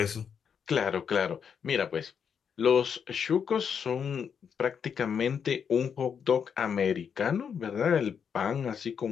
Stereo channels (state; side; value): quieter; right; 7.2 dB